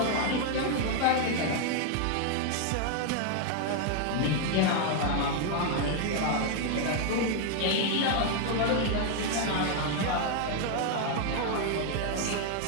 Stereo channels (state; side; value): different; both; correlation 0.00